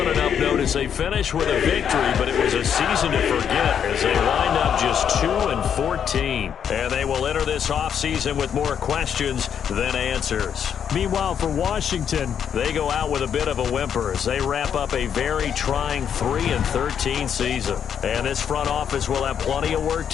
an up note as they finish with a victory, but it was a season to forget as they wind up just 2-14. And they will enter this offseason with more questions than answers. Meanwhile, for Washington, they go out with a bit of a whimper as they wrap up a very trying 3-13 season. And this front office will have plenty of work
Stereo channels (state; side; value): quieter; right; 8.2 dB